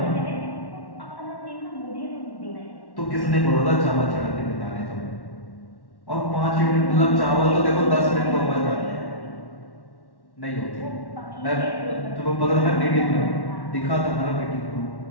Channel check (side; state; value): right; late; 1.1 ms